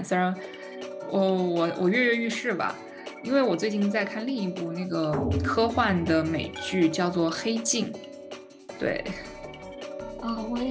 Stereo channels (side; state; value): both; identical; correlation 1.00